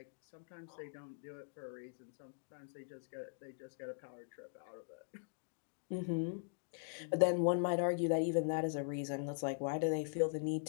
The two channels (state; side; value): silent; right; digital silence